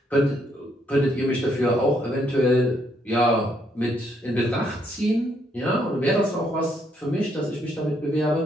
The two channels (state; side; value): normal; both; correlation 0.72